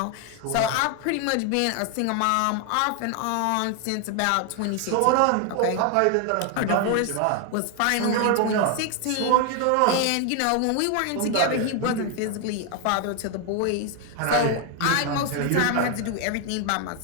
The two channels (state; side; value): different; both; correlation 0.01